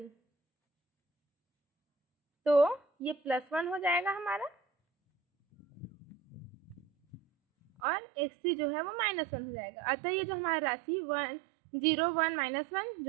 तो ये +1 हो जाएगा हमारा, और x3 जो है वो -1 हो जाएगा। अतः ये जो हमारा राशि 0 1 -1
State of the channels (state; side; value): drops out; left; at 7.8 s